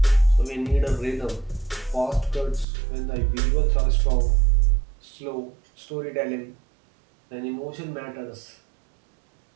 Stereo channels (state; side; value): drops out; left; at 2.7 s